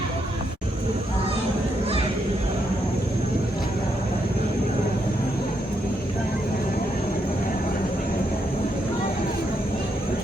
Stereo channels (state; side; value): normal; both; correlation 0.79